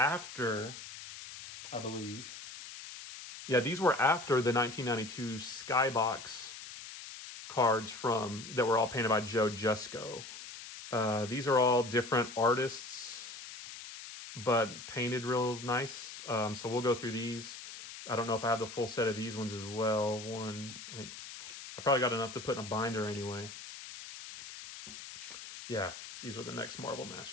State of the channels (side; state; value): left; noise; hiss, 12 dB below the sound